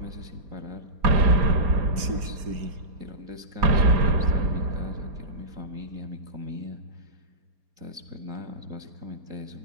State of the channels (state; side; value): late; left; 4.3 ms